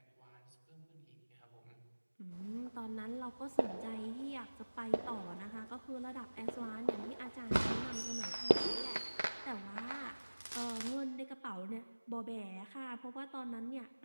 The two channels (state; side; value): inverted; both; correlation -1.00